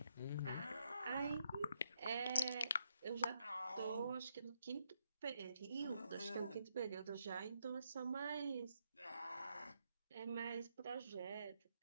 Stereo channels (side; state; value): both; inverted; correlation -0.77